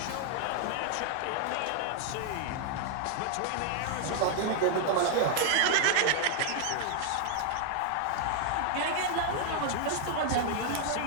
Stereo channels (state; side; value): different; both; correlation 0.00